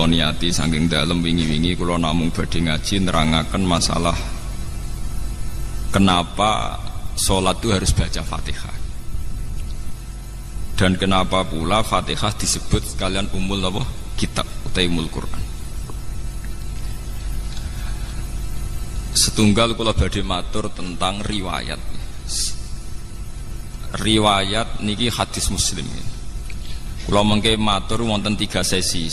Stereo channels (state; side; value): identical; both; correlation 1.00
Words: niati saking dalem wingi-wingi kula namung badhe ngaji nerangaken masalah kenapa sholat itu harus baca Fatihah. Dan kenapa pula Fatihah disebut sekalian umul apa? Kitab utai umul Quran. Setunggal kula badhe matur tentang riwayat. Riwayat niki hadis Muslim. Kula mengke matur wonten 3 sesi.